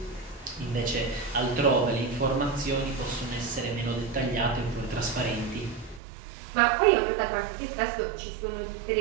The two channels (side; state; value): left; drops out; at 6.0 s